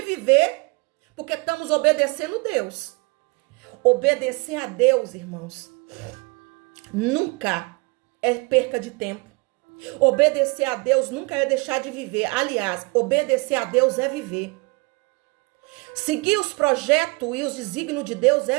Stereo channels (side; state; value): left; quieter; 28.2 dB